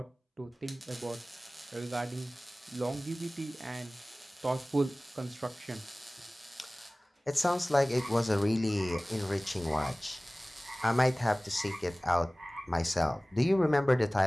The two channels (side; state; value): both; normal; correlation 0.98